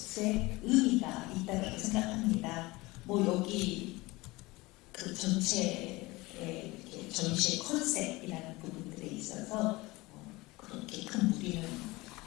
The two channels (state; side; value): quieter; right; 21.7 dB